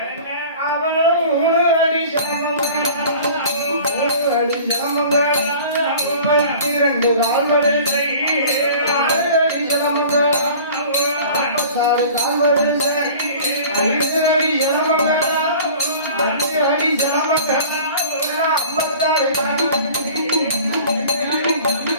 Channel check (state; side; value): inverted; both; correlation -0.44